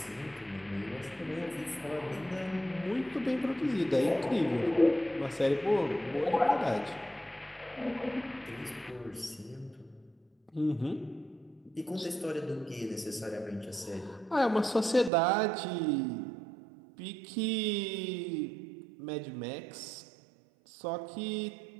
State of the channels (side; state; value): left; drops out; at 15.1 s